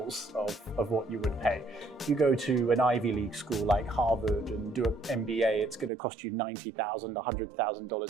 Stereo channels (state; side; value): drops out; left; at 5.9 s